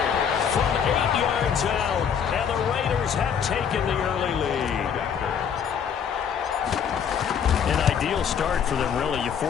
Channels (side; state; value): right; quieter; 7.7 dB